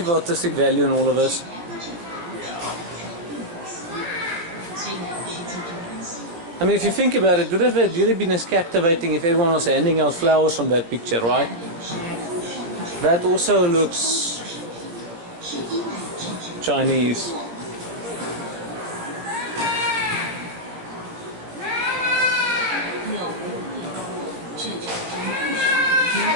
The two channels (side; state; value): left; late; 18 ms